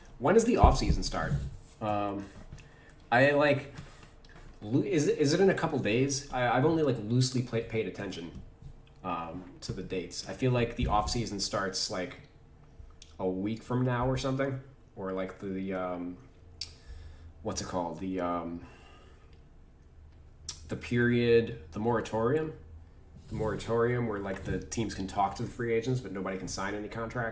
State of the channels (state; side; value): identical; both; correlation 1.00